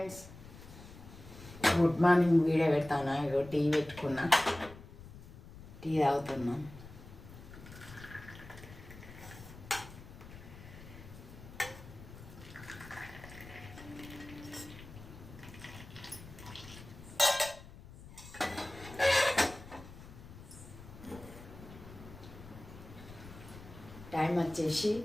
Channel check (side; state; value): left; noise; rumble, 16 dB below the sound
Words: good morning. Video పెడతాను. ఇగో tea పెట్టుకున్నా, tea తాగుతున్నాం. టైం వచ్చేసి